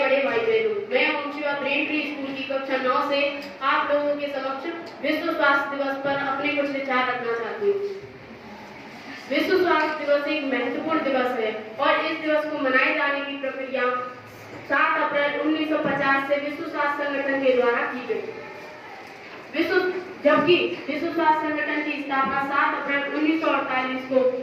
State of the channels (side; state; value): both; identical; correlation 1.00